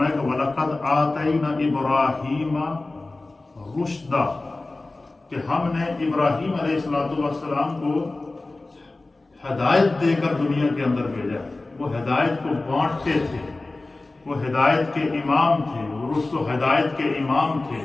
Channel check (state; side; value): quieter; right; 3.1 dB